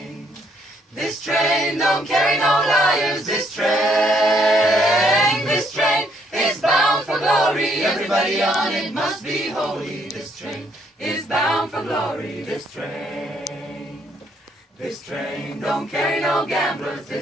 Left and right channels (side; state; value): both; normal; correlation 0.69